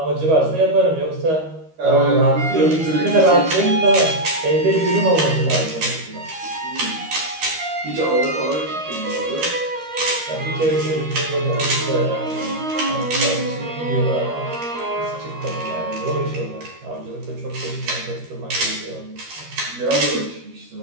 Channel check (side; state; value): left; late; 13 ms